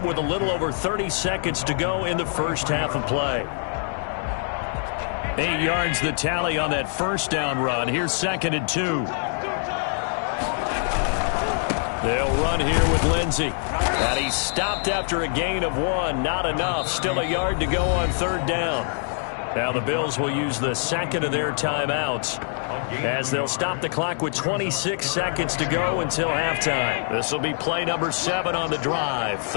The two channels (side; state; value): right; silent; 62 dB below the other